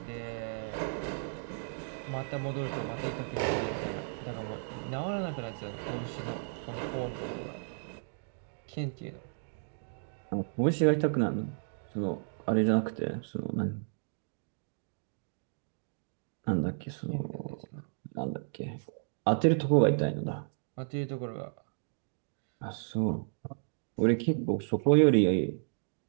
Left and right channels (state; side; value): silent; left; digital silence